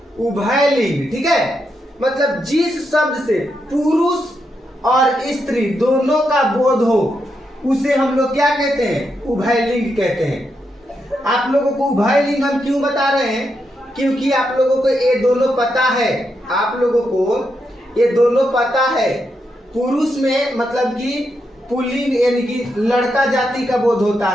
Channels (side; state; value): both; normal; correlation 0.83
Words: उभयलिंग, ठीक है, मतलब जिस शब्द से पुरुष और स्त्री दोनों का बोध हो उसे हम लोग क्या कहते हैं? उभयलिंग कहते हैं। आप लोगों को उभयलिंग हम क्यों बता रहे हैं? क्योंकि आप लोगों को ये दोनों पता है, आप लोगों को ये दोनों पता है। पुरुष में मतलब कि पुल्लिंग यानी कि लड़का जाति का बोध होता